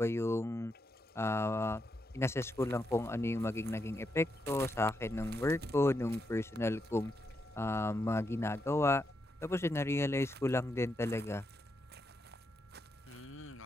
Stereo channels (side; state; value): both; normal; correlation 0.82